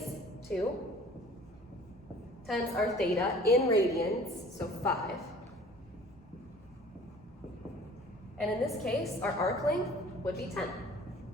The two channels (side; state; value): both; normal; correlation 0.49